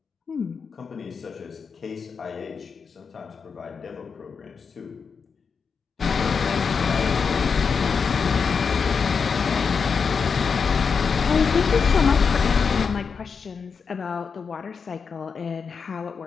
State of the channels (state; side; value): quieter; right; 5.7 dB